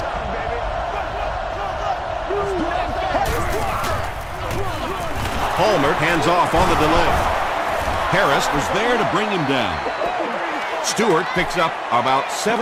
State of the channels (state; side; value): identical; both; correlation 1.00